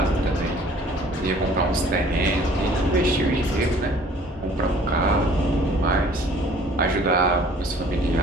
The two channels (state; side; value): normal; both; correlation 0.53